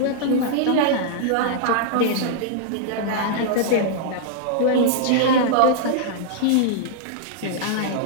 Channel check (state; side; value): different; both; correlation -0.01